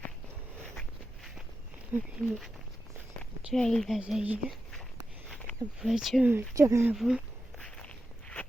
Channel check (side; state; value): both; normal; correlation 0.90